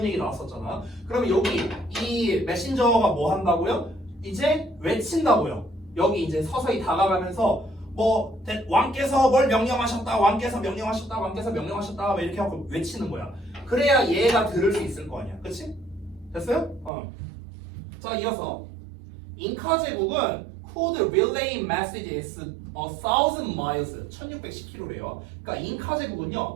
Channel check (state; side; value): drops out; left; at 16.9 s